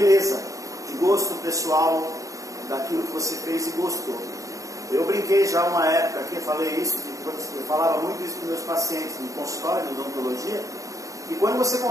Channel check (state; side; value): late; left; 0.16 ms